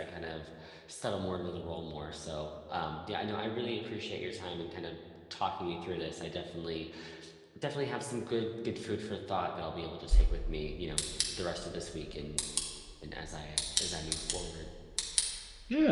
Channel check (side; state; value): both; identical; correlation 1.00